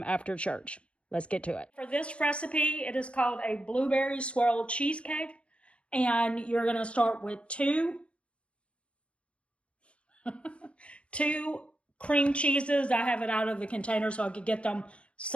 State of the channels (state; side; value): late; right; 0.060 ms